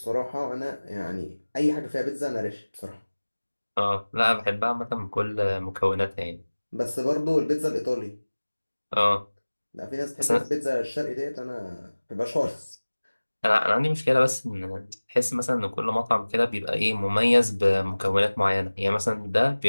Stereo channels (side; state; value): both; inverted; correlation -1.00